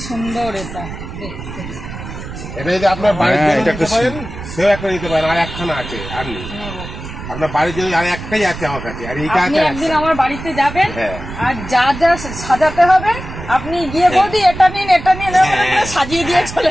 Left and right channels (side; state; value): right; noise; rumble, 10 dB below the sound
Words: সুন্দর এটা। এটা যদি আপনার বাড়িতে নিতে পারেন, সেও একটা নিতে পারেন। আর একখানা আছে, আর নেই আপনার বাড়ির জন্য, আর একটাই আছে আমার কাছে। আর এইটা আছে। একদিন আমার বাড়িতে যাবেন, আর যা যা সাজাতে হবে আপনি গিয়ে বৌদি এটা নিন সাজিয়ে দিয়ে চলে